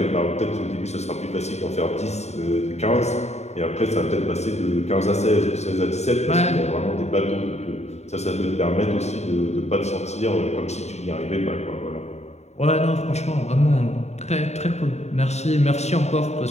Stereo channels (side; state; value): right; late; 0.32 ms